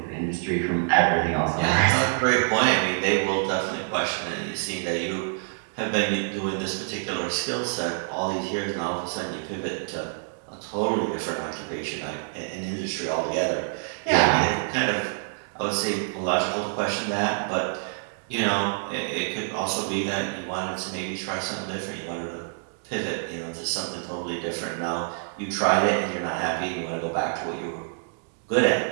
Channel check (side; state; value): left; silent; digital silence